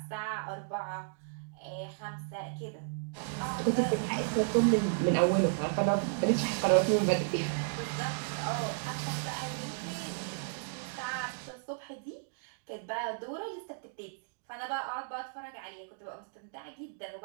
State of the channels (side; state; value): left; silent; digital silence